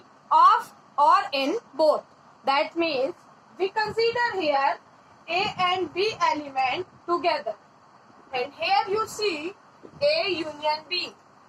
or in both. That means we consider here A and B element together. And here you see A union B.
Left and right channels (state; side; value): identical; both; correlation 1.00